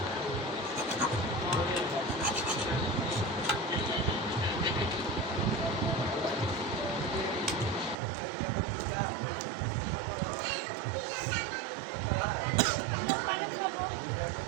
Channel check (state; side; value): drops out; left; at 8.0 s